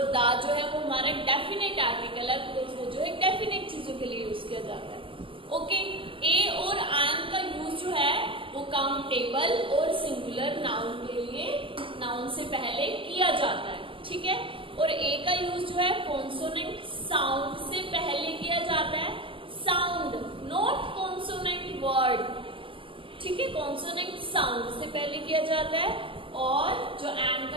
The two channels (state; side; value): late; left; 0.25 ms